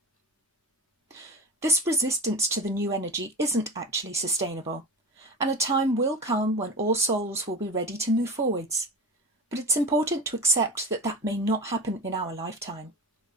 This resistance to the new energy isn't actually sustainable, and a time will come when all souls will be ready to move forwards. But it's important to accept that that may not happen in our lifetime.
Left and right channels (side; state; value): both; normal; correlation 0.29